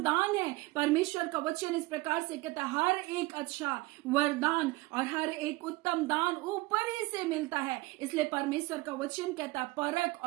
दान है, परमेश्वर का वचन इस प्रकार से कहता है, हर एक अच्छा वरदान और हर एक उत्तम दान ऊपर ही से मिलता है। इसलिए परमेश्वर का वचन कहता है, परख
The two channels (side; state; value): left; quieter; 21.5 dB